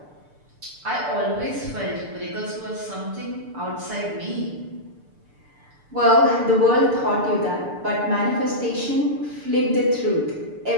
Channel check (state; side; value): late; left; 6.8 ms